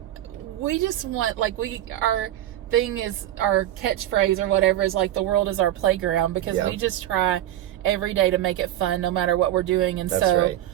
we just want our thing is, our catchphrase or whatever is the world is our playground, because we just try every day to make it fun no matter what we're doing. And that's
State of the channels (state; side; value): quieter; left; 12.9 dB